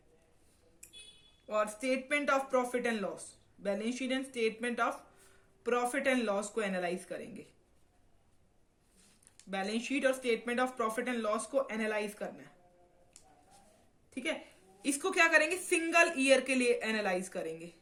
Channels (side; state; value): both; identical; correlation 1.00